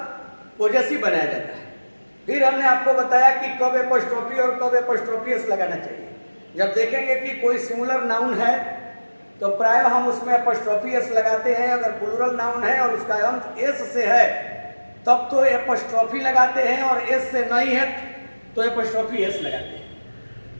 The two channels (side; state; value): both; inverted; correlation -1.00